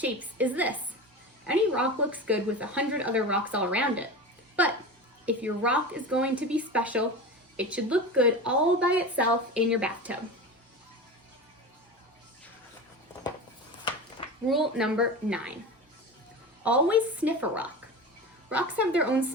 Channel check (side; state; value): both; normal; correlation 0.28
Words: is this: any rock looks good with 100 other rocks all around it. But if your rock is going to be special, it should look good all by itself in your bathtub. Rule number 9. Always sniff a rock. rocks have their own